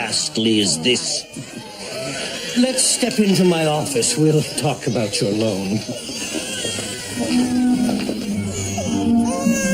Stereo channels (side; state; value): both; identical; correlation 1.00